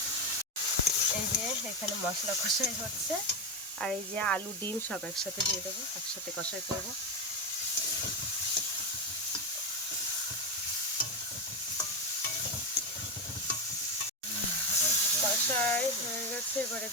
এই যে এখানে মশলা কষাই হচ্ছে, আর এই যে আলু ডিম সব একসাথে দিয়ে দেবো, একসাথে কষাই করবো। কষাই হয়ে গেছে, এবারে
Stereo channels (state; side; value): normal; both; correlation 0.11